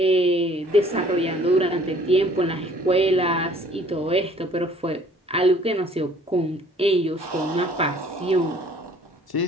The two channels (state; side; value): normal; both; correlation 0.56